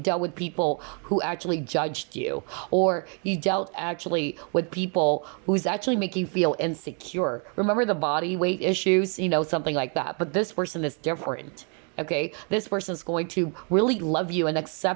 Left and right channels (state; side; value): quieter; left; 39.5 dB